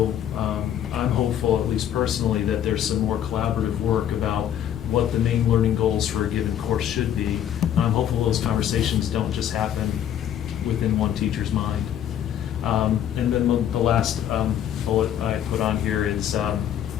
I'm hopeful, at least personally, that there's some more collaborative work about what the main learning goals for a given course should be. I'm hopeful those conversations don't just happen within one teacher's mind. And then the last bullet I put on here is,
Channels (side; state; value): right; quieter; 10.3 dB